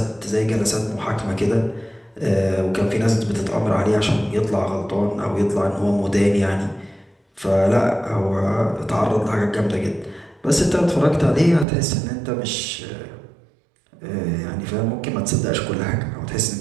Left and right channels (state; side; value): drops out; left; at 11.7 s